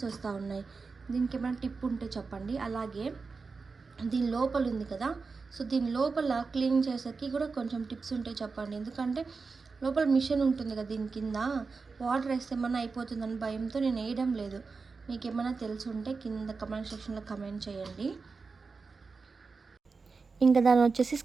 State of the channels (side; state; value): left; quieter; 4.5 dB